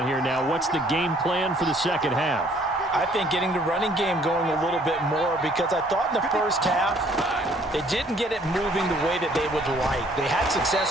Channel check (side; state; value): both; normal; correlation 0.60